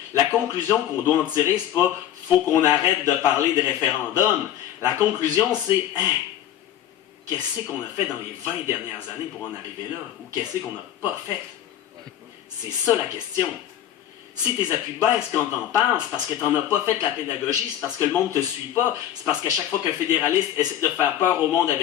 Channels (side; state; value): right; quieter; 11.3 dB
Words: la conclusion qu'on doit en tirer, c'est pas « faut qu'on arrête de parler de référendum ». La conclusion, c'est « qu'est-ce qu'on a fait dans les 20 dernières années pour en arriver là? Ou qu'est-ce qu'on n'a pas fait? » C'est ça la question. Si tes appuis baissent quand t'en parles, c'est parce que t'en as pas fait la pédagogie, c'est parce que le monde te suit pas, c'est parce qu'à chaque fois qu'un fédéraliste essaie de faire peur au monde